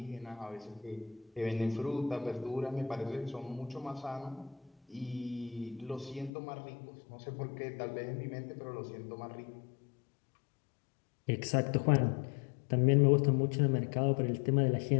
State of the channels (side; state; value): right; drops out; at 6.3 s